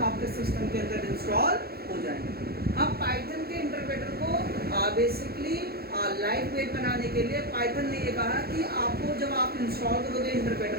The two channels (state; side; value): late; left; 0.45 ms